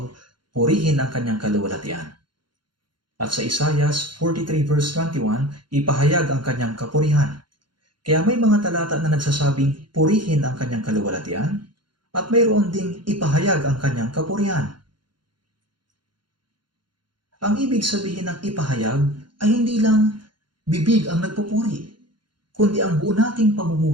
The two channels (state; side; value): late; left; 0.72 ms